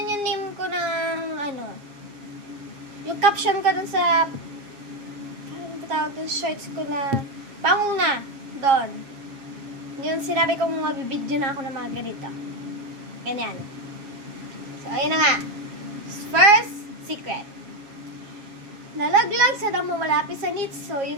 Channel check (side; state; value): left; late; 7.4 ms